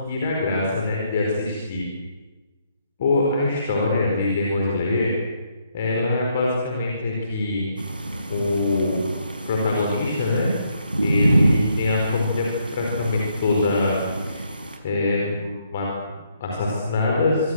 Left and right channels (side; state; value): both; inverted; correlation -0.74